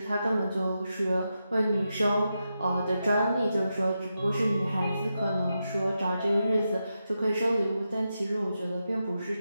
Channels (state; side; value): inverted; both; correlation -0.87